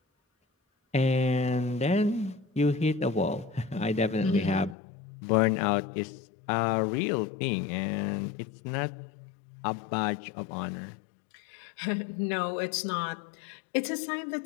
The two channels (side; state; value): right; drops out; at 4.8 s